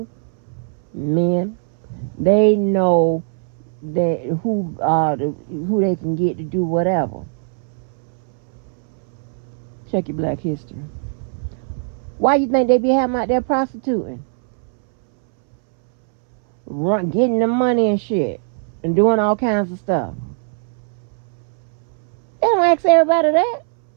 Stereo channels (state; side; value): silent; left; 64 dB below the other